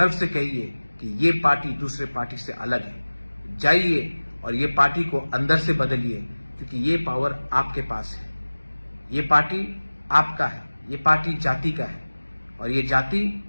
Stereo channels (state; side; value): inverted; both; correlation -1.00